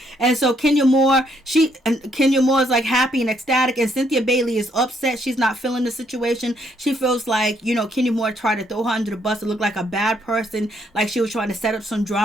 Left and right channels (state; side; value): normal; both; correlation 0.71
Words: And so Kenya Moore is like happy and ecstatic, and Cynthia Bailey is upset. She's not feeling the situation. She feels like, Kenya Moore tried to throw her under the bus to look like a bad person, like she was trying to set up some